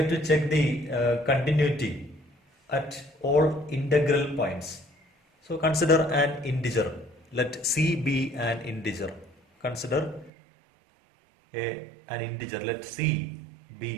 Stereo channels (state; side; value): drops out; left; at 10.3 s